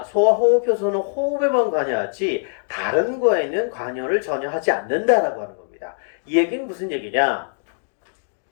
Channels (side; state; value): right; silent; 64 dB below the other